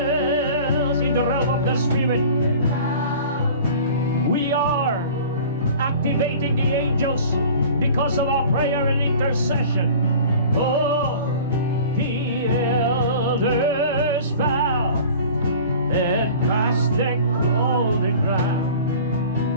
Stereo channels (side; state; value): both; inverted; correlation -0.42